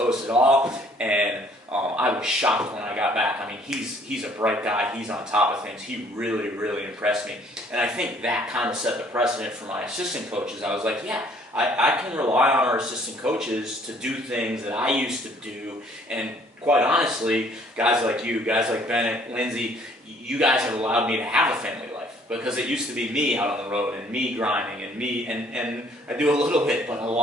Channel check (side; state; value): both; normal; correlation 0.60